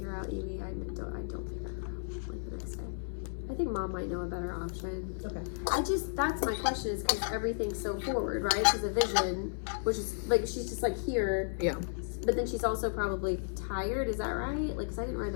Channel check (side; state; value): right; silent; 55 dB below the other